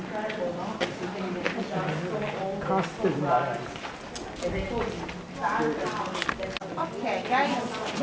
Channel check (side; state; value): both; identical; correlation 1.00